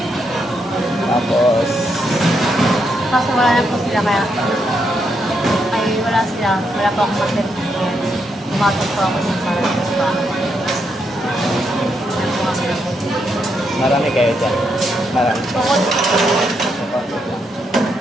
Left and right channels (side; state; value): both; normal; correlation 0.79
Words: Tapos, Kaso wala na po sila kaya ay wala sila. Wala po akong mag-test. Pumasok po ako sa Paranas pa. marami kayo dyan. Marami. Bukod.